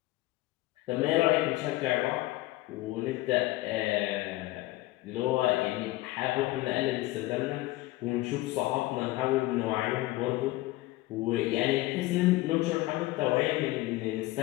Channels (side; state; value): right; quieter; 18.5 dB